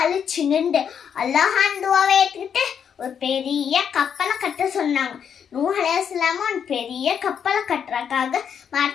நின்று அல்லாஹான் துவாவை ஏற்றுக்கிட்டு ஒரு பெரிய கப்பலை கட்ட சொன்னாங்க. நூஹ் அலைஹி வஸல்லம் ஒரு பெரிய கப்பலை கட்டுறதுக்காக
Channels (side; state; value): right; quieter; 7.8 dB